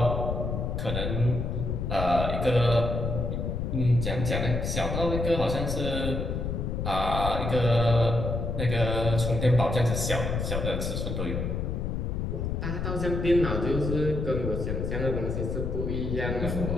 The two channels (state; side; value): noise; left; rumble, 2 dB below the sound